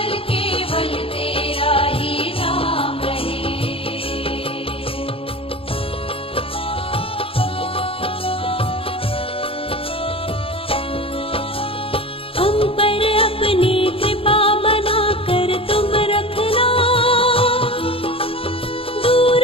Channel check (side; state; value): right; late; 0.27 ms